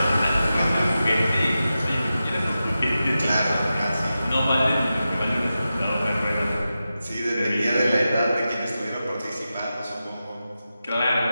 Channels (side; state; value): both; inverted; correlation -0.92